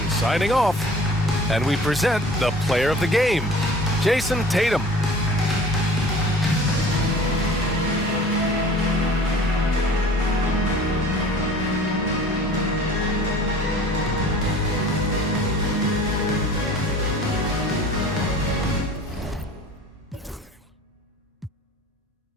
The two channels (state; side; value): normal; both; correlation 0.46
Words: signing off. And we present the player of the game, Jason Tatum.